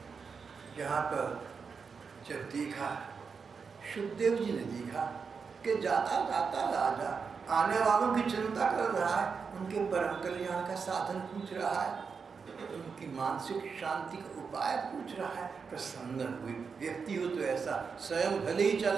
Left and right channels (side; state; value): left; quieter; 5.5 dB